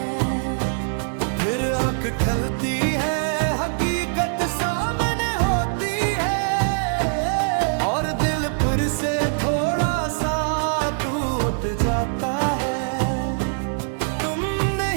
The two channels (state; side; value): silent; left; digital silence